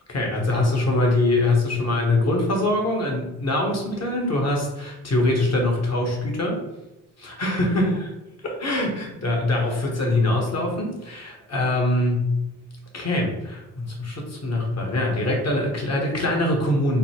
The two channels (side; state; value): both; normal; correlation 0.50